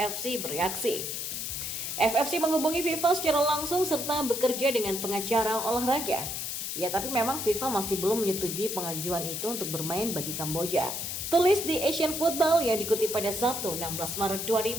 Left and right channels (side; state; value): left; noise; hiss, 4 dB below the sound